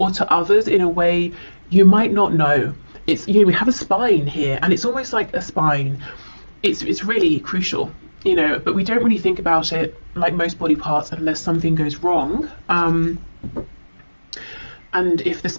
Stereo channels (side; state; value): both; inverted; correlation -1.00